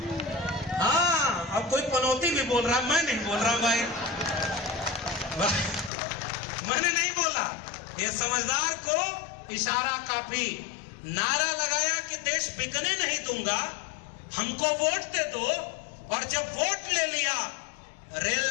हाँ, अब कोई पनौती भी बोल रहा, मैं नहीं बोल रहा भाई, मैंने नहीं बोला। ये समझदार को इशारा काफी। नारा लगाया कि देश बिकने नहीं दूंगा, हमको वोट दे दो। और जब वोट ले लिया,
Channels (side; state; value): right; drops out; at 5.9 s